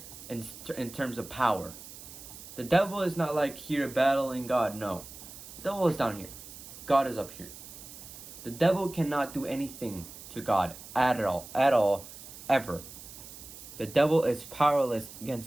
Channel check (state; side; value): noise; right; hiss, 15 dB below the sound